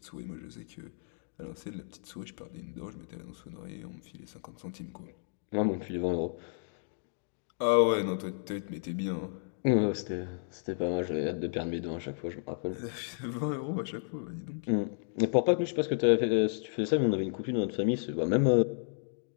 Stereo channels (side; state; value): right; silent; digital silence